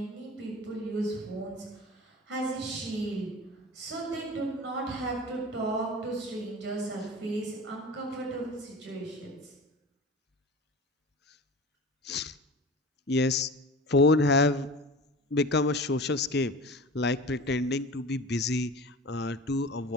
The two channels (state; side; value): normal; both; correlation 0.36